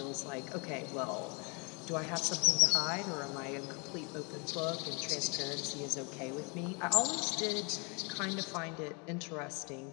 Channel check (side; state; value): right; quieter; 32.6 dB